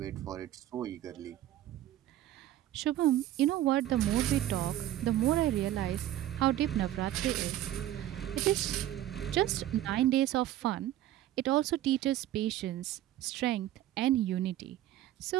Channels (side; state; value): left; quieter; 13.2 dB